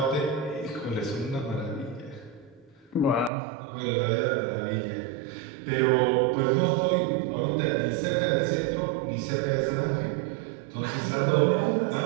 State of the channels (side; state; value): left; drops out; at 3.3 s